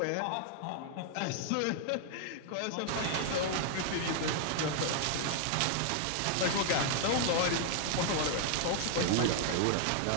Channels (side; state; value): both; different; correlation 0.00